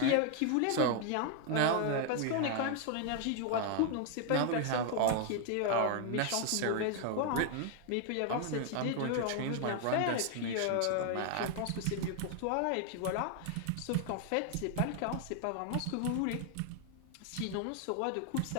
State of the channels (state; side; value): different; both; correlation 0.00